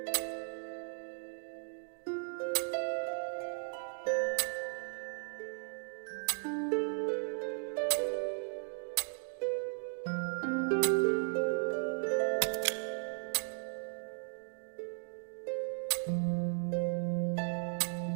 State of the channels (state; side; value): silent; left; digital silence